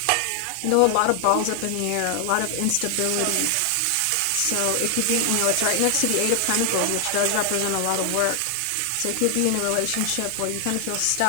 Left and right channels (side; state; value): both; different; correlation 0.00